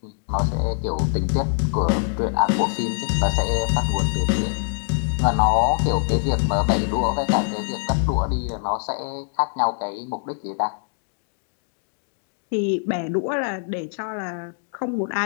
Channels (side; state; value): right; silent; 62 dB below the other